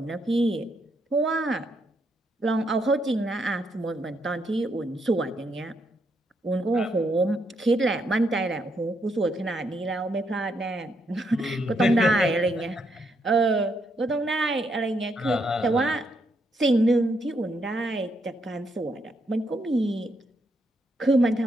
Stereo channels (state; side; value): normal; both; correlation 0.77